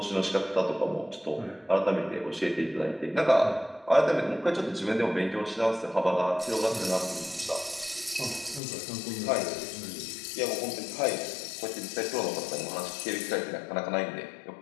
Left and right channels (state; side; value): drops out; right; at 8.6 s